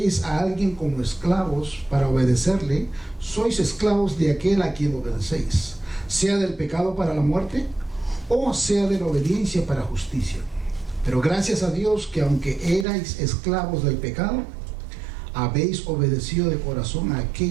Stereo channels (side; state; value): left; drops out; at 12.9 s